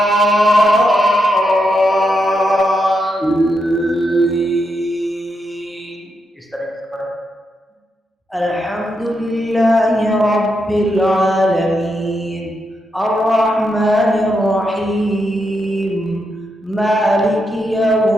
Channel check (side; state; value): both; normal; correlation 0.83